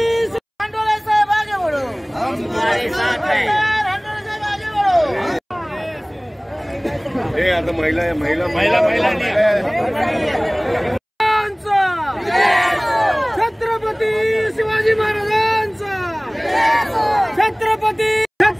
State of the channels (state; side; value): identical; both; correlation 1.00